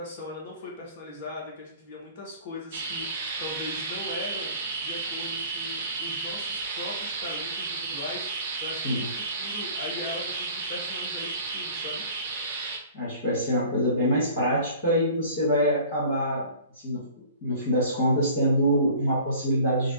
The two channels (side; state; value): both; inverted; correlation -0.47